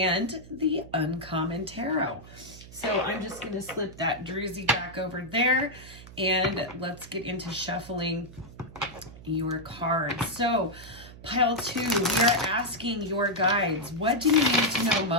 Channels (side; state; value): right; noise; hum, 18 dB below the sound